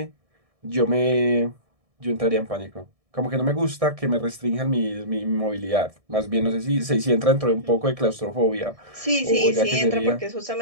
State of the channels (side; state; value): left; late; 1.6 ms